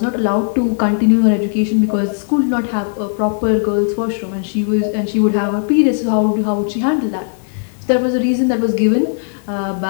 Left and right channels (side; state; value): right; silent; 66 dB below the other